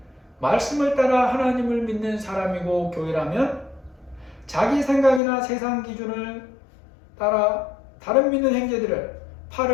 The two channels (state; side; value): drops out; right; at 5.2 s